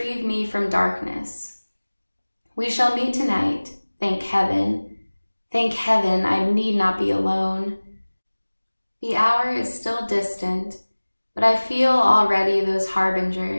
me from darkness. We shall meet tonight, thank heaven. Thank heaven I need not be alone. The hour is still distant, but I feel already those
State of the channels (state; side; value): inverted; both; correlation -1.00